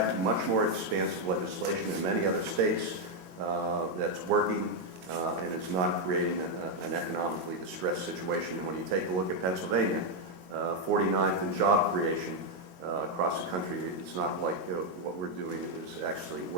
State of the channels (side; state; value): left; late; 22 ms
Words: much more expansive legislation in many other states that's working and is not creating an economically distressed situation. And when you take a look at Pennsylvania, 49th in job creation across the country, it's not like what we're doing is actually